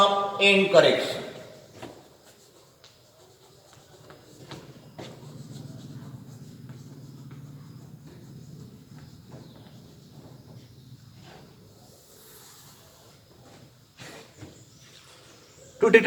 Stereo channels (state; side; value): identical; both; correlation 1.00